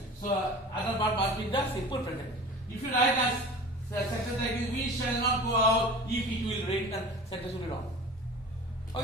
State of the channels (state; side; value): normal; both; correlation 0.38